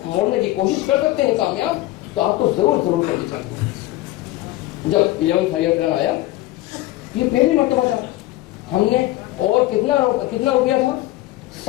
موڑنے کی کوشش کر سکتے ہیں کامیاب, تو آپ کو ضرور کرنی چاہیے. جب 11 5 ایئر پلان آیا یہ پہلی مرتبہ تھا, ہم نے اور کتنا روپیہ تھا,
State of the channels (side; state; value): right; quieter; 17.0 dB